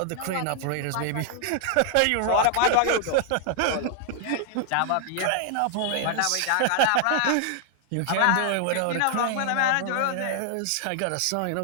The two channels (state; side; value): different; both; correlation 0.00